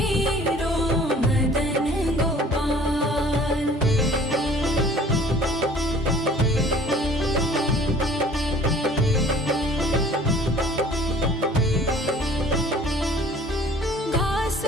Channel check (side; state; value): both; normal; correlation 0.51